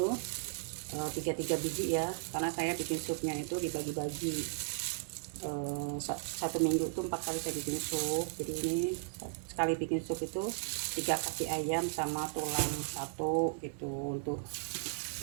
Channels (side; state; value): left; silent; 54 dB below the other